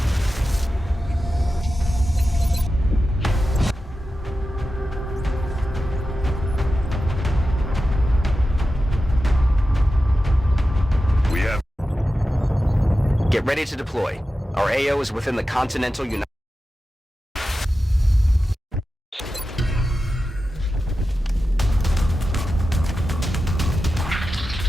Get ready to deploy. Our AO is within the Continental United...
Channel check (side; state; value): both; normal; correlation 0.92